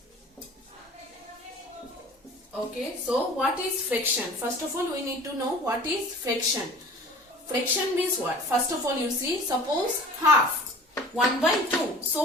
Okay, so what is fraction? First of all, we need to know what is fraction. Fraction means what? First of all, you see, suppose half 1 by 2.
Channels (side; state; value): both; normal; correlation 0.44